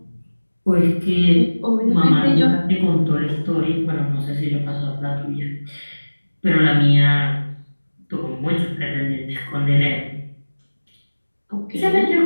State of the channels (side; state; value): both; inverted; correlation -1.00